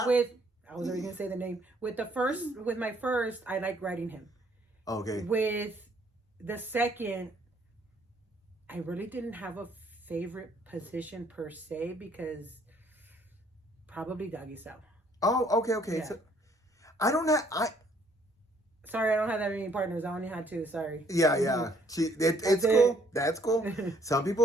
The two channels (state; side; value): normal; both; correlation 0.64